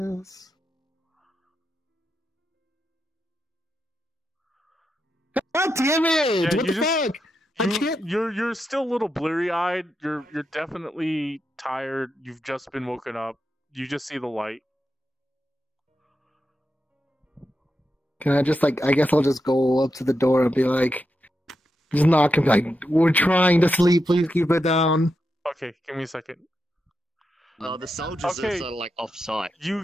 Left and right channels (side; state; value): both; normal; correlation 0.86